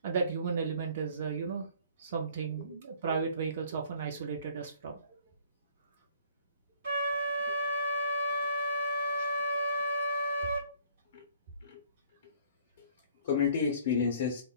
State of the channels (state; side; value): inverted; both; correlation -0.57